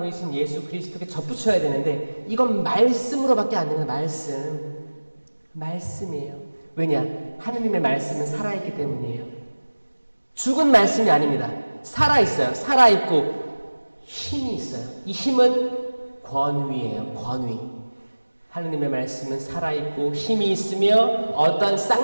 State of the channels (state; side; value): inverted; both; correlation -1.00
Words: 예수 그리스도께 접붙여야 되는데 이건 말씀으로밖에 안 되는 말씀이에요. 왜냐? 하느님의 말씀은 살아있기 때문이에요. 죽은 말씀이 아닙니다. 살아있어요. 살아있고 힘이 있어요. 이 힘은 권위예요. 권위. 하느님의 말씀은 살아있고 힘이 있으며 어떤